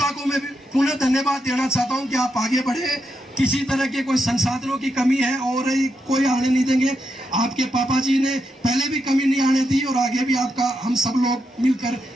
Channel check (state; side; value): normal; both; correlation 0.84